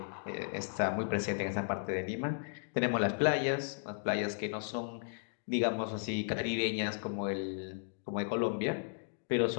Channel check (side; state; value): right; silent; digital silence